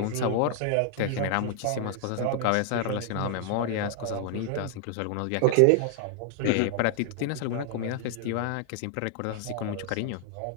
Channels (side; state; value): both; different; correlation 0.00